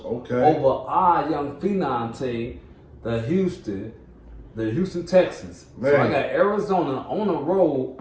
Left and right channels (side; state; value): both; identical; correlation 1.00